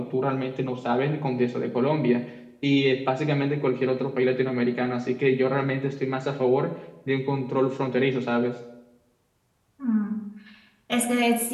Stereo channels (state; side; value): identical; both; correlation 1.00